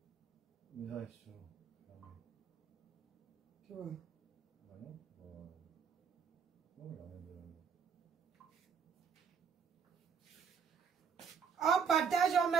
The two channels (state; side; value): quieter; left; 6.5 dB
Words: une réaction. Tu vois. Ah non, On partage, on